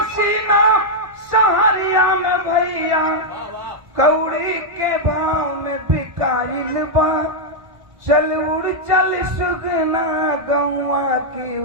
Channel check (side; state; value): left; late; 1.5 ms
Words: सहरिया में भैया, कौड़ी के भाव में बिकाइल बा। चल उड़ चल सुगना गौवा की